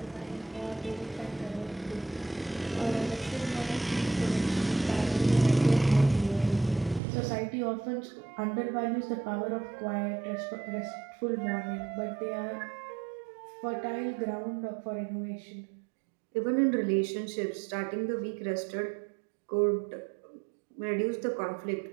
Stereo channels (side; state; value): left; drops out; at 7.0 s